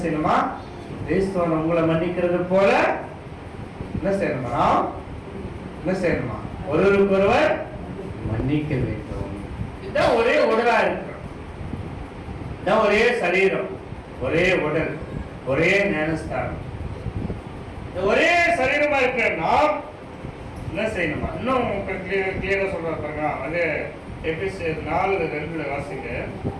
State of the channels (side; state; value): both; identical; correlation 1.00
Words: செய்யணுமா, கிறிஸ்துவன் உங்களை மன்னிக்கிறது போல என்ன செய்யணுமா, என்ன செய்யணுமா, ஒருவருக்கொருவர் மன்னிக்க வேண்டும். இதுதான் ஒரே உடலா இருக்கிறோம், இதுதான் ஒரே சரீரம், ஒரே உடல், ஒரே ஞானஸ்தானம், ஒரே சரீரமா இருக்கிற நாம் என்ன செய்யணுமா, இன்னும் கிளியரா சொல்ற பாருங்க. அது எபேசியர் 4:2 வாசிங்க.